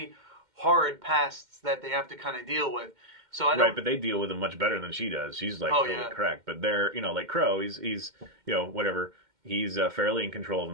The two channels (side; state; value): left; late; 2.1 ms